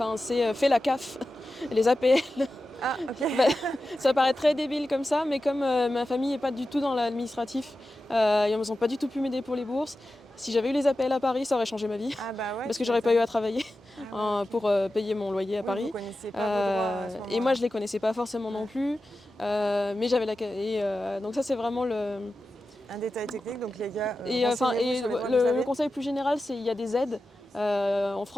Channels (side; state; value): both; normal; correlation 0.93